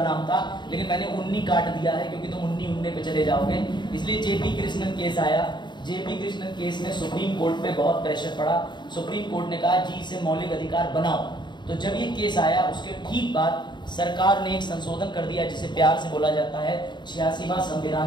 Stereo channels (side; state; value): right; late; 0.22 ms